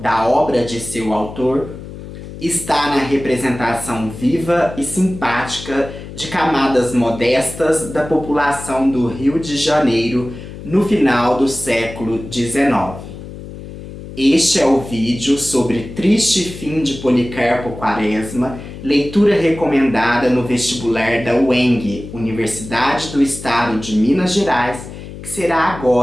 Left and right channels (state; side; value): noise; left; hum, 13 dB below the sound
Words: obra de seu autor, está na representação viva e simpática de camadas modestas da população do Rio de Janeiro no final do século XIX. Este é o vídeo sobre Triste Fim de Policarpo Quaresma, leitura recomendada no vestibular da UENG, Universidade do Estado de Minas Gerais, que será